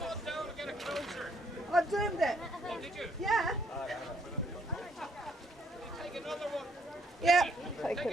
I've doomed it. Oh, did you? Yeah. Take another one. Yeah. Take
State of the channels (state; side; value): normal; both; correlation 0.70